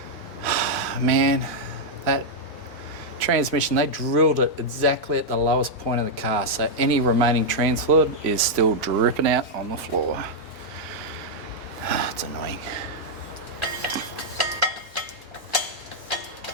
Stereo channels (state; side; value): normal; both; correlation -0.03